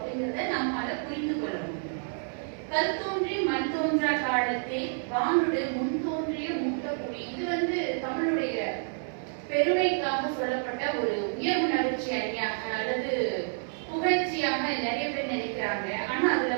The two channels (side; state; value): left; silent; digital silence